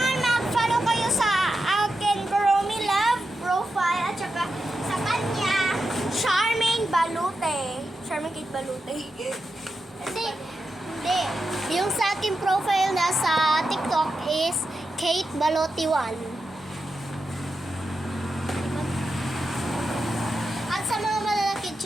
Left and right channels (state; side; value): normal; both; correlation 0.89